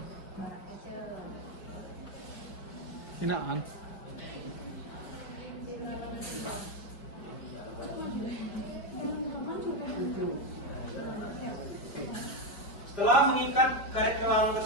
Hinaan. Setelah mengikat karet gelang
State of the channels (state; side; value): late; right; 5.1 ms